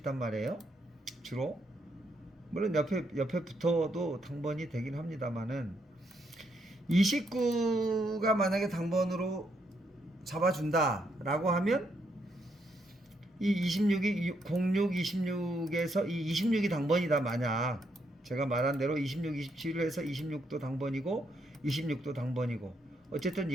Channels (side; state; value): both; normal; correlation 0.76